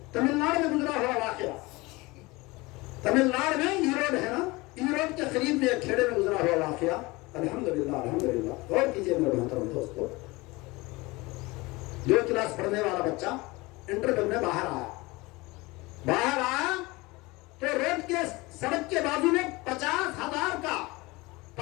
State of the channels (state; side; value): quieter; right; 22.9 dB